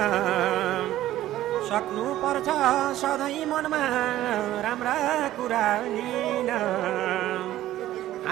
सक्नु पर्छ सधैँ मनमा राम्रा कुरा लिन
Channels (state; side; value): quieter; left; 14.1 dB